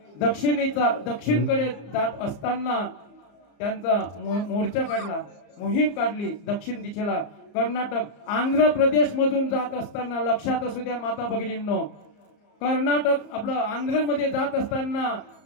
दक्षिणकडे जात असताना त्यांचा मोर्चा काढला, मोहीम काढली दक्षिण दिशेला. कर्नाटक आंध्र प्रदेश मधून जात असताना, लक्षात असू द्या माता भगिनींनो, कर्नाटक आपलं आंध्र मध्ये जात असताना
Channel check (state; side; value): late; right; 34 ms